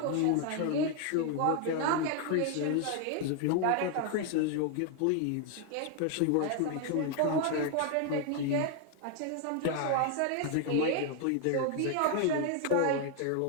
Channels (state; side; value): different; both; correlation 0.00